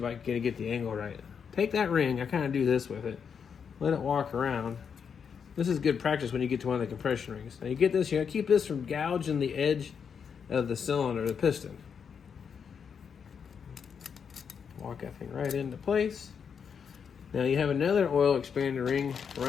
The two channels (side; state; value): right; quieter; 6.8 dB